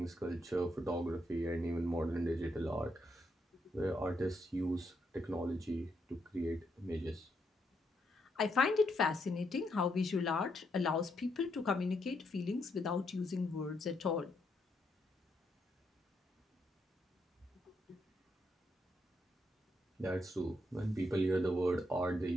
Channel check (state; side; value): normal; both; correlation 0.78